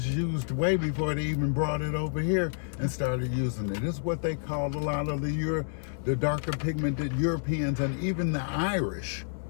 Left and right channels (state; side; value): silent; right; 58 dB below the other